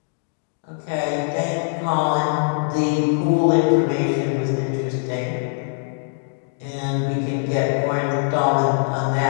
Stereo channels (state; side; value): silent; right; digital silence